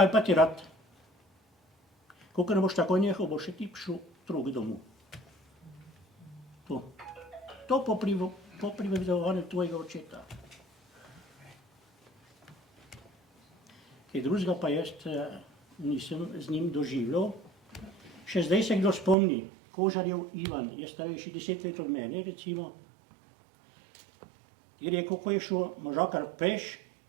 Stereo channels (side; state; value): left; drops out; at 19.2 s